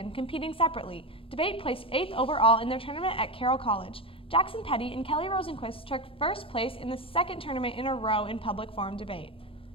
competing separately. Debate placed 8th overall in their tournament at Carroll College. Jackson Petty and Kelly Rosenquist took first place in the second tournament in a row in public forum debate.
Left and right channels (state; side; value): late; right; 0.26 ms